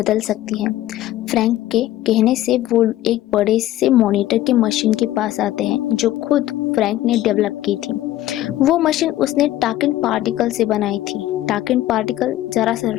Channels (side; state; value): right; quieter; 14.4 dB